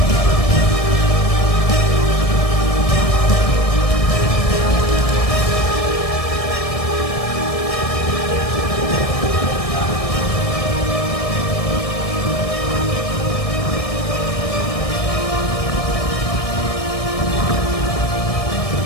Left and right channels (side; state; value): right; late; 1.7 ms